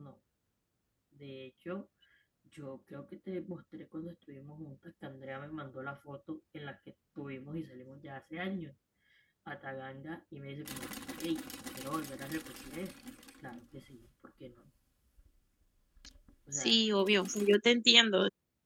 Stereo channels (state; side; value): identical; both; correlation 1.00